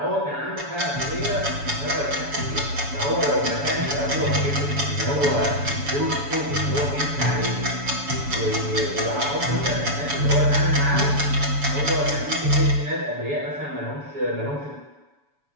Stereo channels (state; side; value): late; left; 7.0 ms